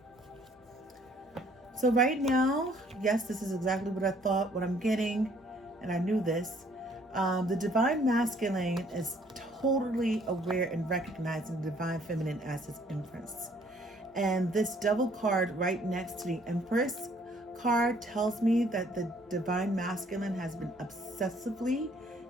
right now, yes, this is exactly what I thought, what I'm getting, and I knew this. The divine masculine is totally aware and recognizing the divine feminine as his empress. And this devil card right next to the empress card tells me that the divine masculine has been obsessively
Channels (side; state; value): both; normal; correlation 0.61